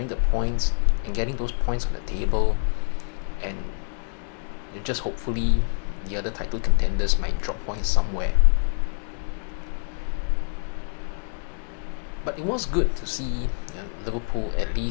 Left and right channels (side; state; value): right; silent; 61 dB below the other